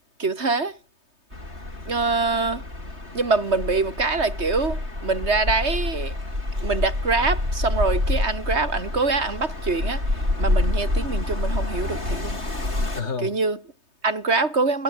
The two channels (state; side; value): late; left; 3.2 ms